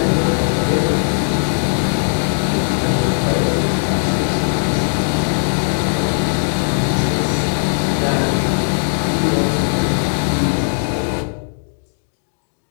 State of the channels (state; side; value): silent; right; digital silence